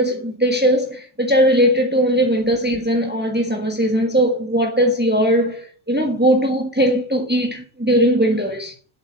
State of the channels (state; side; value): normal; both; correlation 0.25